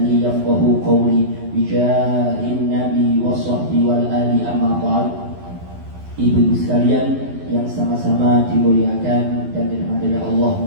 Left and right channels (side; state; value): left; late; 11 ms